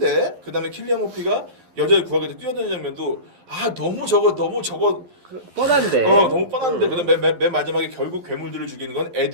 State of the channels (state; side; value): late; left; 11 ms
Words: 그다음에 킬리안 머피가 여자를 구하게 돼 뛰어드는 장면도 너무 저거 뻔한데. 너무 뻔한데. 그다음에 맨 마지막에 결국 괴물들을 죽이는 건